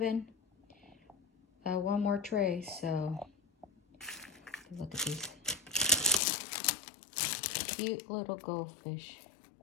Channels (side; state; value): right; drops out; at 6.2 s